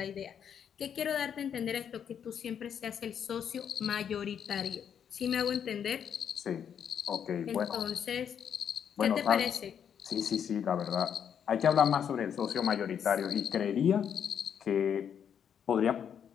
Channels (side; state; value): right; quieter; 8.2 dB